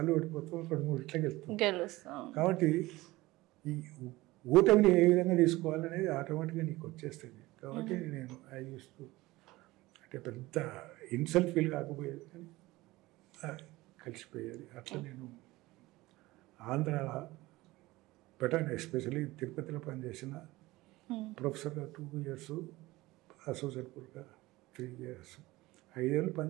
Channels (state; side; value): quieter; left; 19.4 dB